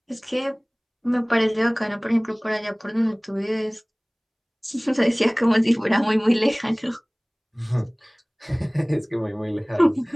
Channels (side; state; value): both; identical; correlation 1.00